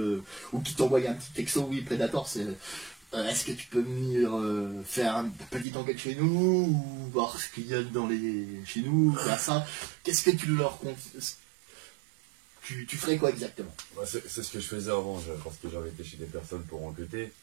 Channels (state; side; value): drops out; left; at 5.7 s